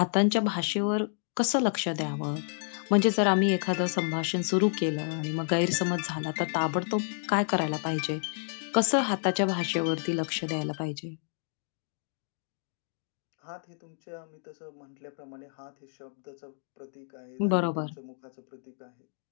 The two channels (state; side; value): silent; right; 58 dB below the other